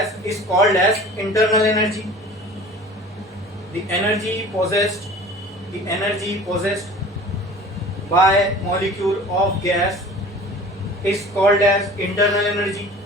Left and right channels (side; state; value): both; normal; correlation 0.43